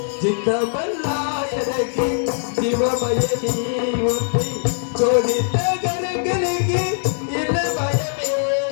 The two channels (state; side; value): silent; right; digital silence